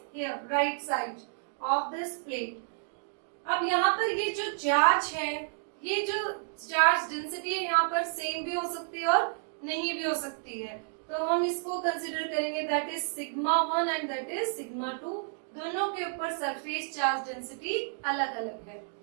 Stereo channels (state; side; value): silent; left; digital silence